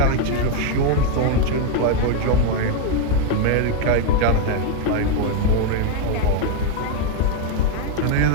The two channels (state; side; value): different; both; correlation 0.01